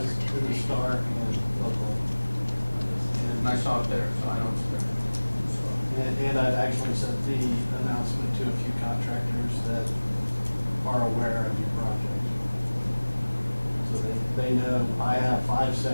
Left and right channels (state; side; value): inverted; both; correlation -1.00